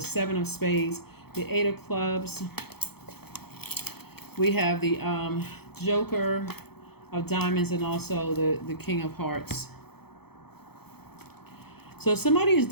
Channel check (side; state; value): right; late; 0.96 ms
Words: of Spades, the Eight of Clubs. We have the Joker of Diamonds, and also the King of Hearts. So somebody is